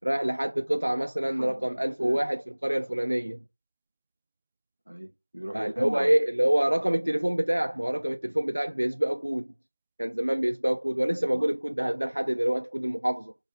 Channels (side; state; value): both; inverted; correlation -1.00